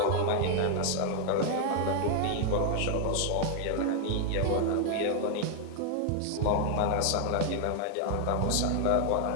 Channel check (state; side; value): different; both; correlation 0.00